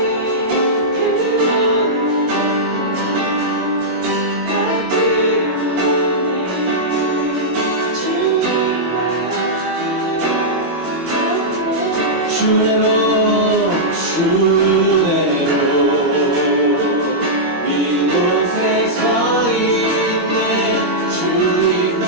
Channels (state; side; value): late; left; 21 ms